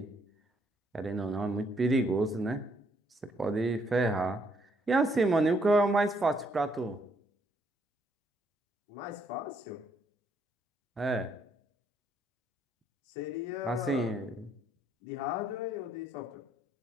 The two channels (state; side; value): normal; both; correlation 0.70